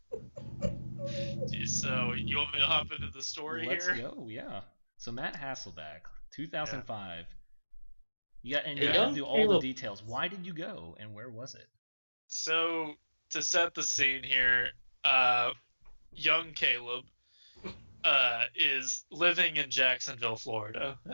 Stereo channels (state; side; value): inverted; both; correlation -1.00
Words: So you want me to hop into the story Let's here? go, yeah. So Matt Hasselbeck, 2005. You got Yeah. to do all the details. Why did you go, and where was it? So to set the scene here, young Caleb is living in Jacksonville, Florida